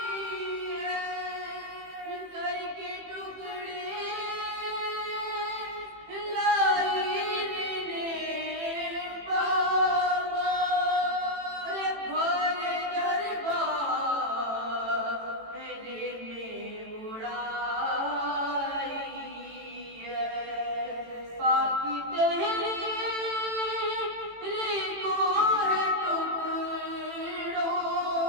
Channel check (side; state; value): left; late; 18 ms